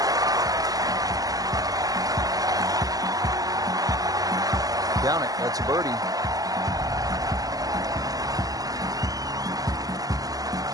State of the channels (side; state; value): left; late; 0.17 ms